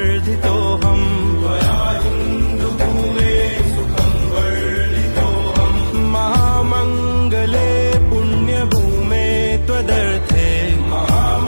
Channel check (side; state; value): both; inverted; correlation -1.00